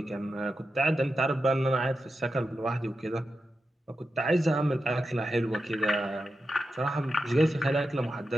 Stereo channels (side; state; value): both; normal; correlation 0.89